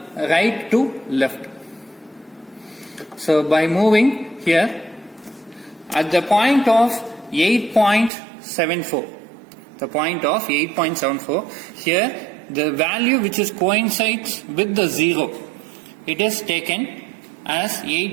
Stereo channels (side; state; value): left; drops out; at 8.1 s